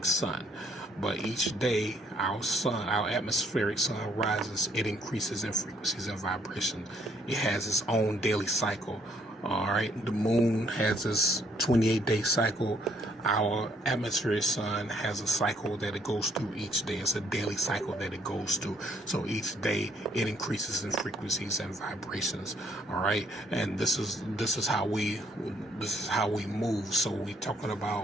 sun. But each day, our sun, our atmospheric sun rises, it increases in frequencies and vibration. It has its own daily cycle. All right, the moon has this 28-day cycle. Our atmospheric sun has a cycle that it goes through each day. It's a daily cycle that it goes through. So each day it increases in frequencies and vibrations. All right, and this is how we move. So we're talking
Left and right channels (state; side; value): normal; both; correlation 0.67